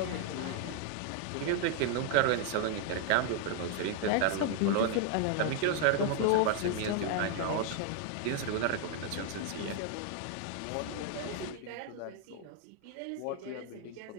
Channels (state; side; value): different; both; correlation 0.00